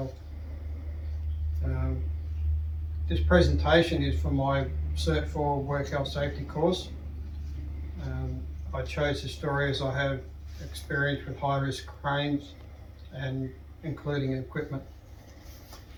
This presentation is for my Cert 4 Work Health Safety course. I chose the story as I have experience with high-risk cranes and including equipment.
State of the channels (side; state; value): both; identical; correlation 1.00